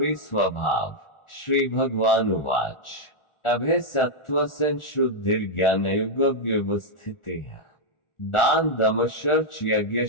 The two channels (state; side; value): late; right; 1.4 ms